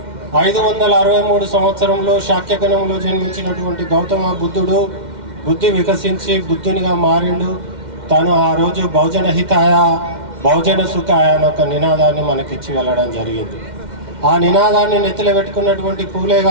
563 సంవత్సరంలో శాక్యగణంలో జన్మించినటువంటి గౌతమ బుద్ధుడు బుద్ధి వికసించి బుద్ధునిగా మారిండు. తను ఆ రోజు బహుజన హితాయ బహుజన సుఖాయ అని ఒక నినాదాన్ని మనకిచ్చి వెళ్ళడం జరిగింది. ఆ నినాదాన్ని నెత్తిలో పెట్టుకున్నటువంటి పూలే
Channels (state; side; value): late; left; 2.1 ms